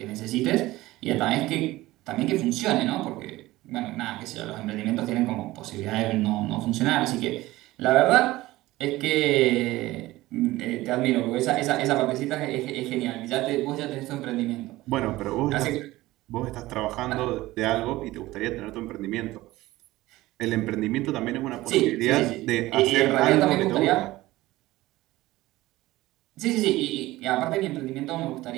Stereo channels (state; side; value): quieter; left; 17.9 dB